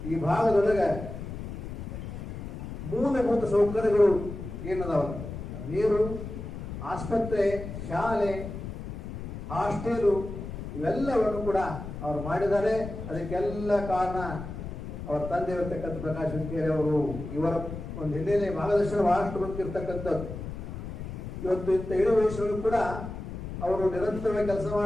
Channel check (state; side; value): noise; left; rumble, 8 dB below the sound